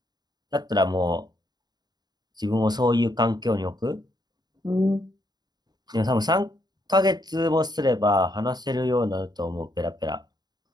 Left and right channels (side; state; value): left; late; 0.20 ms